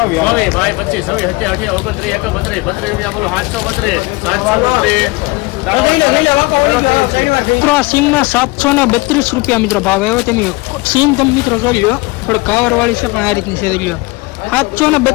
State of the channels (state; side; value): quieter; right; 23.9 dB